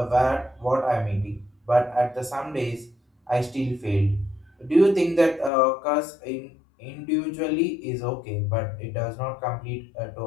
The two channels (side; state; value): right; drops out; at 5.5 s